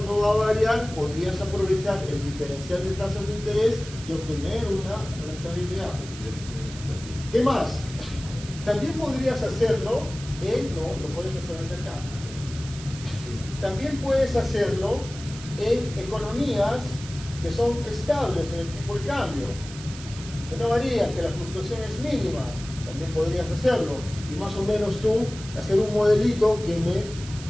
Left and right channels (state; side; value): noise; right; hiss, 14 dB below the sound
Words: no va a variar, podrías aprovechar el diferencial de tasas de interés y obtener una rentabilidad. ¿Qué más? También podrías hacerlo no puedes hacerlo hacia acá. También puedes hacerlo en economías que son estables en el tipo de cambio, que no varían, que la fluctuación es mínima. También podrías hacerlo y más o menos tú hacer un modelito que me